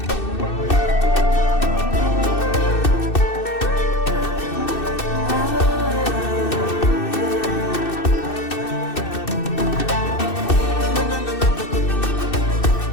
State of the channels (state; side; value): late; right; 2.6 ms